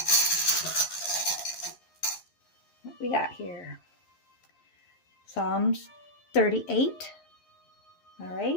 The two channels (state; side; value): late; right; 11 ms